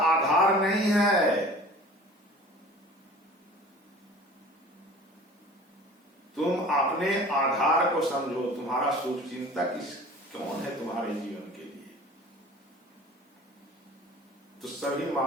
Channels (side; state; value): both; normal; correlation 0.43